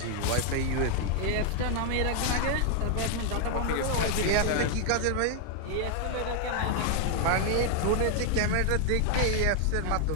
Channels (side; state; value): both; different; correlation 0.00